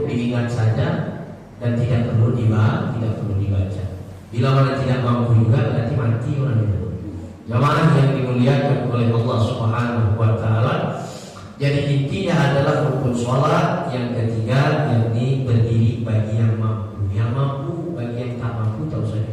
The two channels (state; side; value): identical; both; correlation 1.00